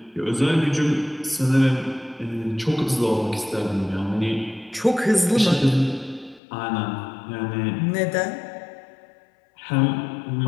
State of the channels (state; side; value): drops out; right; at 6.4 s